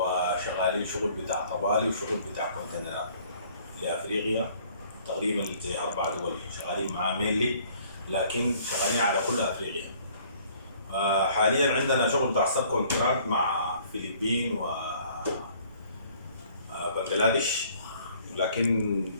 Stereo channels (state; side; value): inverted; both; correlation -0.57